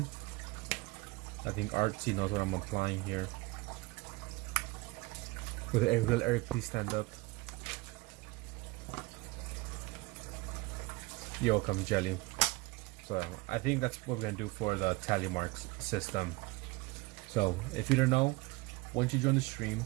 I think Artsy knows what I'm applying here. Will Eric please stand up? You're welcome, Jelly. So I think that's what we're gonna do for the tally marks system. So if you don't know, once you join the stream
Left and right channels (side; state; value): left; quieter; 23.4 dB